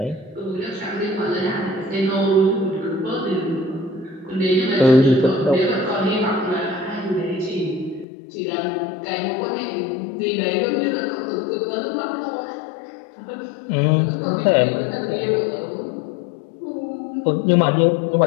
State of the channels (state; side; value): drops out; right; at 8.1 s